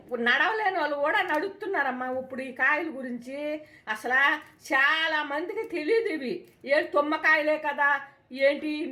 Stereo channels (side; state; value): both; identical; correlation 1.00